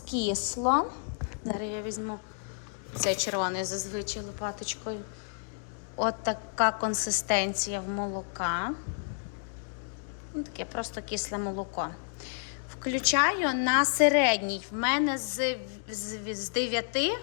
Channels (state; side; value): silent; right; digital silence